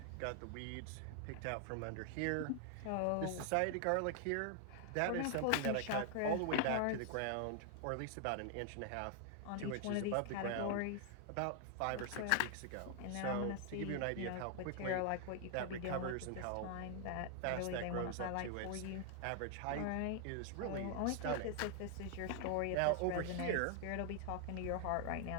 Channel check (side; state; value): both; different; correlation 0.00